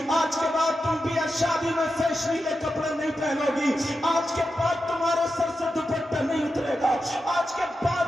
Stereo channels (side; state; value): both; normal; correlation 0.89